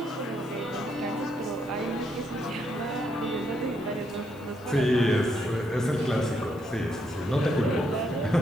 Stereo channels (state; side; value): noise; left; hiss, 27 dB below the sound